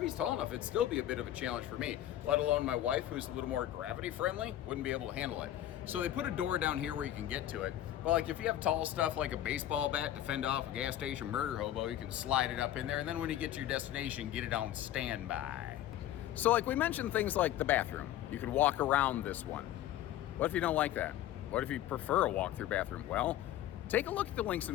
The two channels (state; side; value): quieter; right; 12.6 dB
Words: tall enough, it'd still be a bit of a challenge for me, let alone my wife, who's a little more gravity friendly, wouldn't be able to handle it. So they put a door down here where you can get to it. Well, like if you have tall stuff like a baseball bat to fend off a gas station murder hobo, you can slide it up in there, and then when you get to your destination, get it on standby. So like we mentioned things like the bathroom. You could walk around this one. What if you don't like that? What if you prefer a walk-through bathroom? Well, take a look at the links in